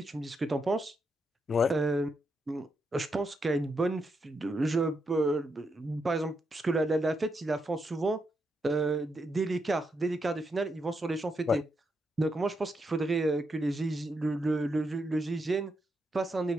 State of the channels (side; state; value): both; normal; correlation 0.82